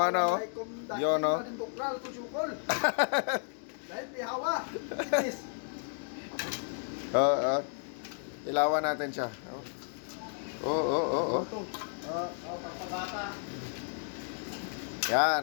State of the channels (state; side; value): silent; right; 56 dB below the other